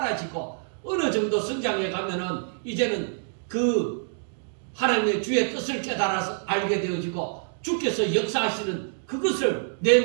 어느 정도 성장해 가면은 이제는 그 하나님의 주의 뜻을 깨달아서 알게 되어지고 주께서 역사하시는 그것을 내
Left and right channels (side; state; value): left; silent; digital silence